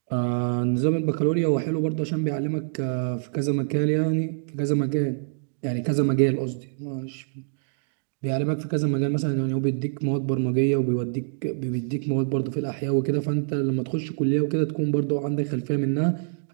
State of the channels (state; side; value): silent; left; digital silence